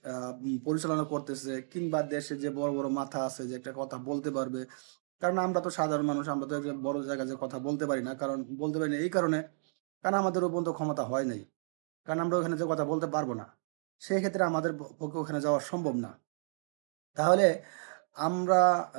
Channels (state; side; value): silent; left; digital silence